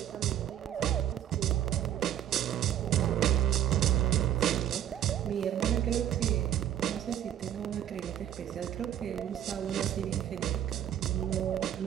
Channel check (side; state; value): left; quieter; 10.7 dB